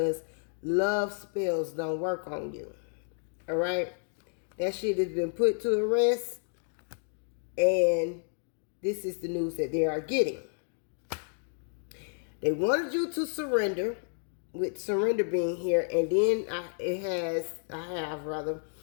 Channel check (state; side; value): silent; right; 57 dB below the other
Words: love spells don't work on you, all right? That shit has been put to rest, and this is the news that they are getting. They wanted you to surrender, with surrender being here, and then I have